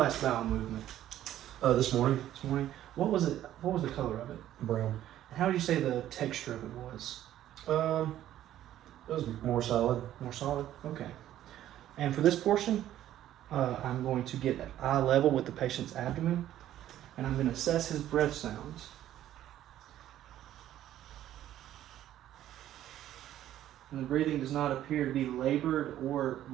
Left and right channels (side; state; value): left; quieter; 12.4 dB